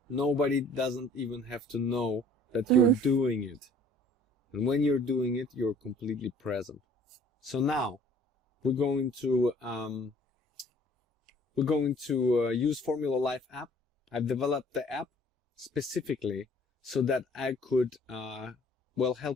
Nobody doesn't even have to know that you're doing it. And when you're doing it, you're completely present. So now we're going to use Formula.life app. I've developed the app specifically so that I could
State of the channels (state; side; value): normal; both; correlation 0.54